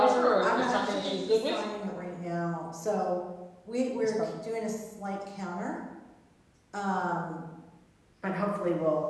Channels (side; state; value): both; identical; correlation 1.00